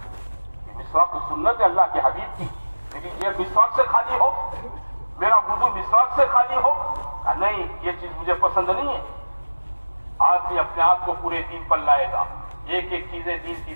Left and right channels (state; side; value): inverted; both; correlation -1.00